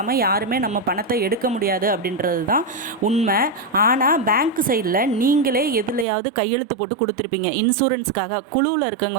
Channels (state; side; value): drops out; left; at 6.1 s